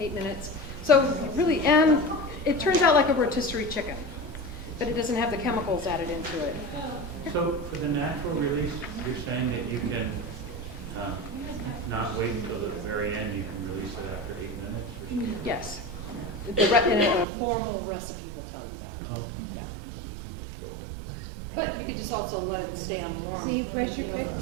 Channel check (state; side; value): drops out; left; at 17.2 s